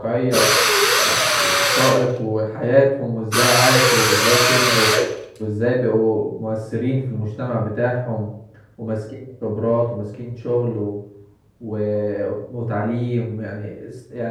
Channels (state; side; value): identical; both; correlation 1.00